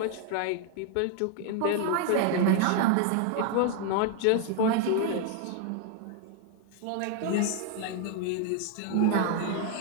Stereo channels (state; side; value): different; both; correlation 0.00